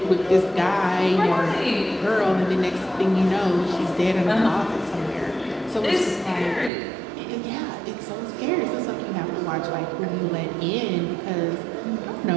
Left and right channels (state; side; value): drops out; left; at 6.7 s